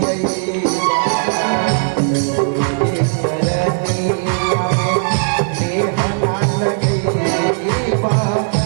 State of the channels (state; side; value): silent; left; digital silence